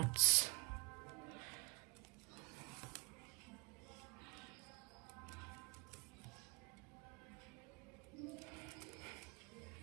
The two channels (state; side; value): quieter; left; 32.9 dB